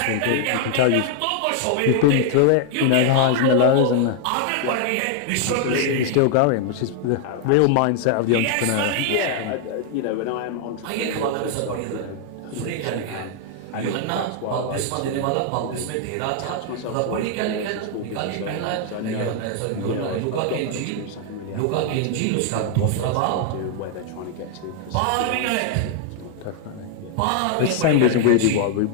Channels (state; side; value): different; both; correlation 0.00